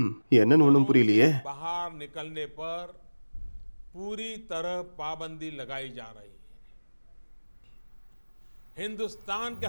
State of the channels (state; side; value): inverted; both; correlation -1.00